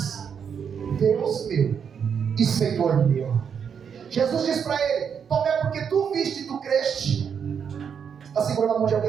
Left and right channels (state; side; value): quieter; left; 7.2 dB